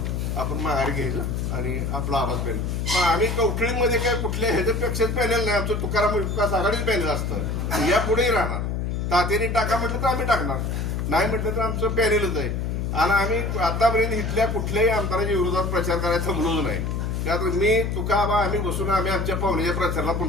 आपण माघारी घ्यायचं आणि आपला आवाज पॅनेल. मग आम्ही कवठीमध्ये काय कुठल्या ह्याच्यापेक्षाच पॅनेल नाही. आमचं तुकाराम विकास आघाडीच पॅनेल असतं. यापुढेही राहणार. तात्याने टाका म्हटलं तर आम्ही टाकणार नाही म्हटलं तर आमचं पॅनेलच आहे. आणि आम्ही आतापर्यंत इथल्या कुठल्याही आमदाराच्या विरोधात प्रचार करायला थांबलोच नाही. त्यात मी तुकाबा आम्ही बसून आम्ही आमच्या पाहुण्याच्या प्रचाराला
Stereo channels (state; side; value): noise; left; hum, 1 dB below the sound